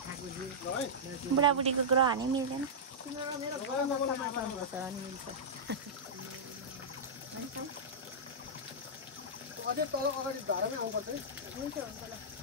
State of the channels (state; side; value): normal; both; correlation -0.12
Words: बुढाबुढीको ग्रह हानि मिल्दैन अझै तल अगाडि धारामै आउनुपर्छ है हुन्छ